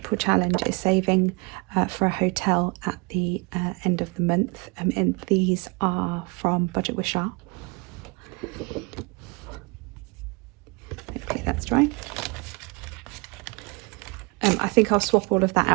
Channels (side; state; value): left; quieter; 28.8 dB